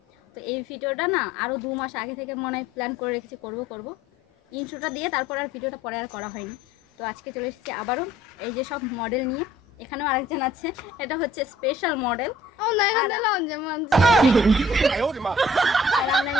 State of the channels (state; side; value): normal; both; correlation 0.56